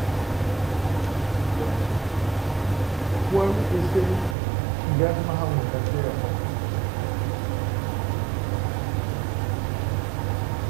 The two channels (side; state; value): left; drops out; at 4.4 s